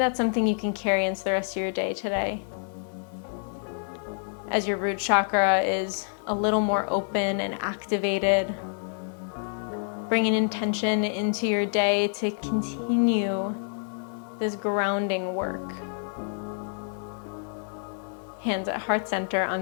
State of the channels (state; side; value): silent; right; digital silence